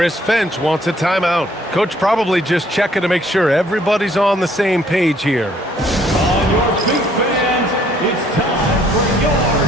Finch wants a timeout. Coach probably just checking to make sure everybody's on the same page here. On your feet, fans, it's time for your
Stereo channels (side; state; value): both; normal; correlation 0.63